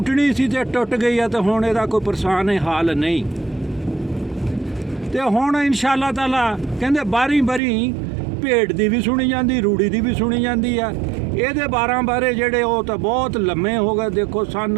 ਸੀ ਤੇ ਟੁੱਟ ਗਈ ਆ, ਤੇ ਹੁਣ ਇਹਦਾ ਕੋਈ ਪਰੇਸ਼ਾਨ ਹਾਲ ਨਹੀਂ। ਤੇ ਹੁਣ ਇਨਸ਼ਾ ਅੱਲਾਹ ਤਾਲਾ ਕਹਿੰਦੇ ਬਾਰੀ ਭੇਡ ਦੀ ਵੀ ਸੁਣੀ ਜਾਂਦੀ, ਰੂੜੀ ਦੀ ਵੀ ਸੁਣੀ ਜਾਂਦੀ ਆ। ਇਹਦੇ 12 ਬਾਰੇ ਜਿਹੜੇ ਉਹ ਤਾਂ ਬਹੁਤ ਲੰਮੇ ਹੋ ਗਏ। ਦੇਖੋ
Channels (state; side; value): drops out; left; at 7.6 s